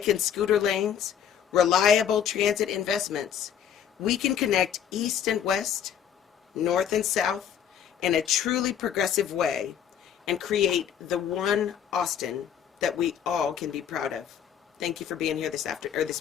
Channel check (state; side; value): quieter; right; 8.9 dB